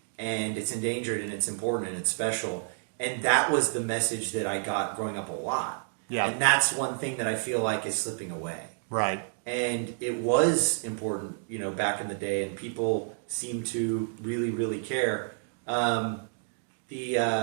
and it's endangered and it's important and it's special. And that was the message that I got growing up a lot. Yeah. And that's one thing that I feel like is slipping away. Right. And it was important, back in the day, and people seem to really, really care. Oh,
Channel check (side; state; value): left; silent; digital silence